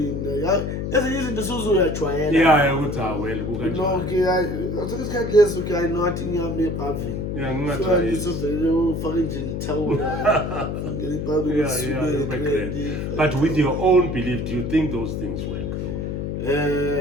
Yeah, ezinye izinto suzuyajwayela. Yeah, ukuthi well kukanjani. No, okay, isikhathi leso okay I know athi ngiyame pavin. Yeah, ngingajwayela. So ngizovele ufake nje ithawula. Ngene pavin. Yeah, but with your own belief, do you think those things work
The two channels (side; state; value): left; noise; hum, 3 dB below the sound